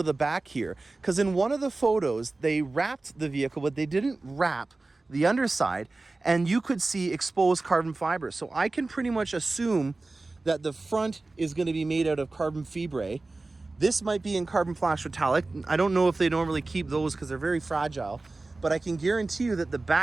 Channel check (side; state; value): left; quieter; 3.3 dB